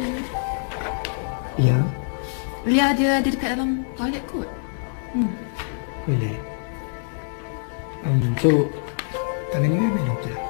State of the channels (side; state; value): right; silent; 58 dB below the other